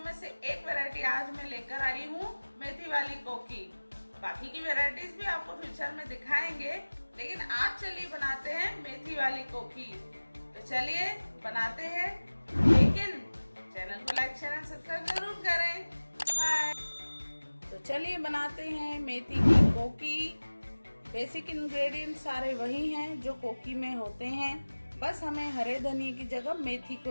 में से एक वैरायटी आज मैं लेकर आई हूँ, मेथी वाली कोकी। बाकी की वैरायटीज भी आपको फ्यूचर में दिखाएंगे, लेकिन आज चलिए बनाते हैं मेथी वाली कोकी। तो चलिए बनाते हैं, लेकिन चैनल को लाइक शेयर एंड सब्सक्राइब जरूर करें। बाय। तो चलिए बनाते हैं मेथी की कोकी। बेसिक इंग्रेडिएंट सारे वही हैं जो कोकी में होते हैं, बस हमें हरे धनिए की जगह मेथी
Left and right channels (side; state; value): both; inverted; correlation -1.00